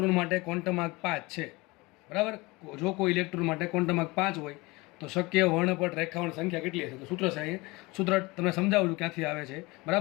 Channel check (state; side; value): quieter; right; 23.5 dB